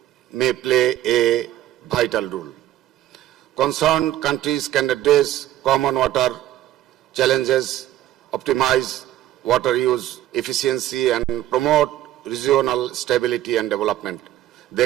may play a vital role. Concerned countries can address common water challenges, optimize water use efficiency, and promote regional stability and development.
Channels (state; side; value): quieter; left; 13.5 dB